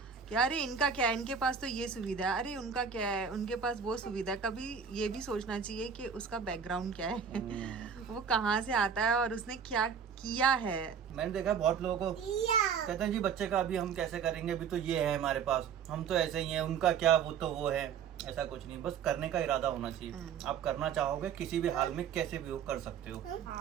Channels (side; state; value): left; quieter; 7.0 dB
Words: कि अरे इनका क्या है, इनके पास तो ये सुविधा है, अरे उनका क्या है, उनके पास वो सुविधा है। कभी ये भी सोचना चाहिए कि उसका बैकग्राउंड क्या है, वो कहाँ से आता है और उसने क्या किया है। मैंने देखा बहुत लोगों को कहते हैं जी बच्चे का अभी हम कैसे करेंगे, अभी तो ये है हमारे पास, हम तो ऐसे ही हैं, उनका क्या, वो तो वो है। ऐसा कुछ नहीं, बस करने का इरादा होना चाहिए। आप करना चाहोगे किसी भी हाल में कैसे भी हो कर सकते हो।